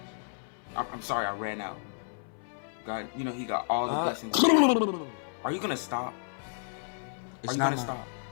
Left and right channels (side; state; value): right; silent; 57 dB below the other